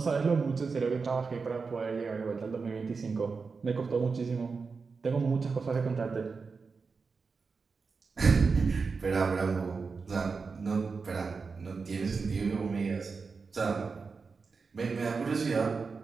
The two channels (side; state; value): left; quieter; 4.8 dB